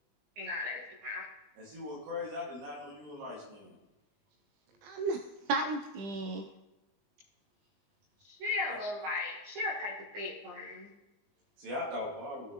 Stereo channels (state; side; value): late; left; 20 ms